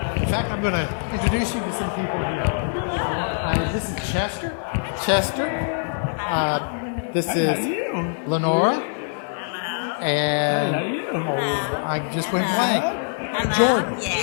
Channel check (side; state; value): right; silent; digital silence